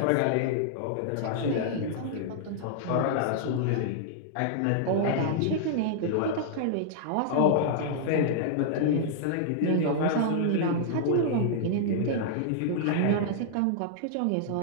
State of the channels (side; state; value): both; different; correlation -0.01